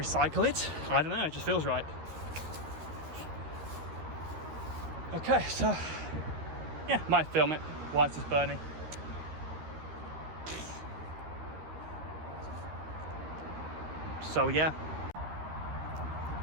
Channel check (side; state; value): left; late; 13 ms